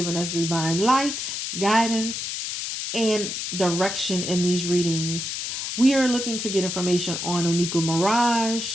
us divine light, guidance, and direction in these readings. We are looking to get information on Nicki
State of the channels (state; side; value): noise; left; hiss, 4 dB below the sound